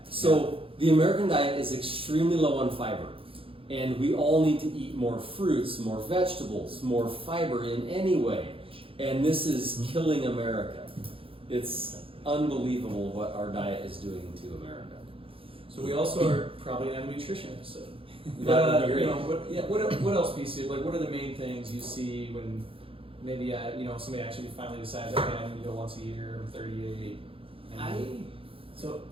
So the American diet is extremely low on fiber. And we all need to eat more fruits, more vegetables, more fiber in any way. And this is killing America. It's unbelievable what our diet is doing to America. So we also are probably gonna have a nutrition episode. That would be great. What else, PC? Like, what are the main things you see when maybe somebody actually finally decides, okay, I need to go once a year, I'm 38.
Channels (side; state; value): left; late; 0.27 ms